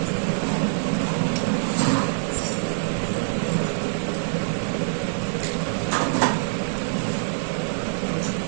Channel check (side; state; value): left; silent; digital silence